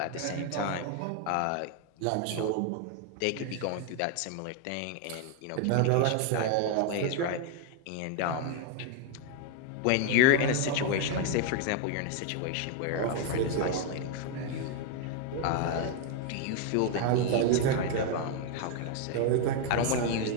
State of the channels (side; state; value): both; different; correlation 0.01